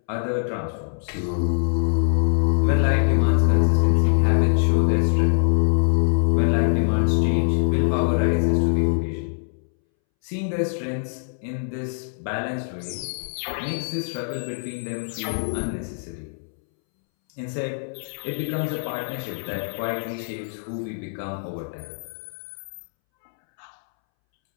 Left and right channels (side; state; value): right; silent; 63 dB below the other